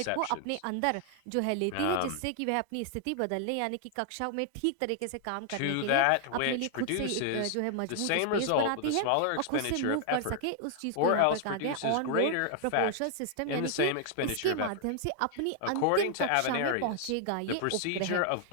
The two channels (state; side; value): different; both; correlation 0.00